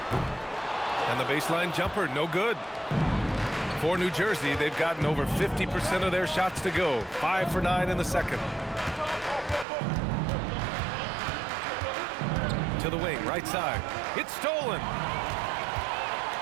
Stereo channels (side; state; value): left; drops out; at 9.7 s